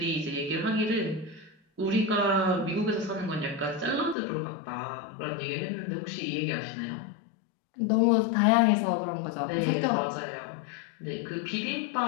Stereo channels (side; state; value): right; drops out; at 4.2 s